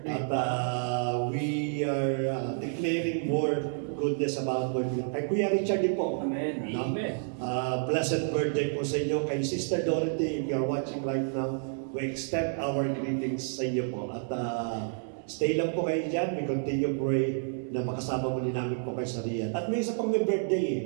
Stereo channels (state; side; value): silent; left; digital silence